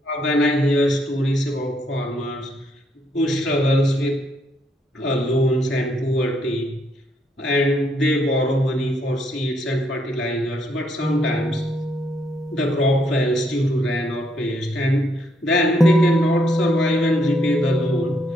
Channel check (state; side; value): normal; both; correlation 0.73